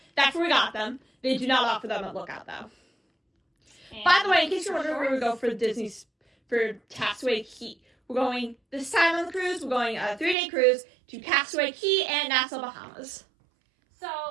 that's where we got them. They do not offer them at Lookout, though. And by the way, in case you're wondering where we go for Castaway Cay, we're going, this time on the cruise, we're going a 3-day cruise to Castaway Cay and Nassau, Bahamas.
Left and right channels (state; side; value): drops out; left; at 10.4 s